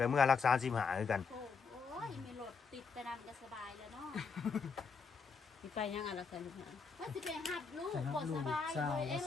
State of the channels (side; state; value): right; quieter; 5.3 dB